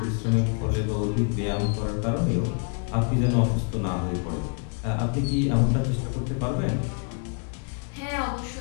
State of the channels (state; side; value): quieter; right; 39.5 dB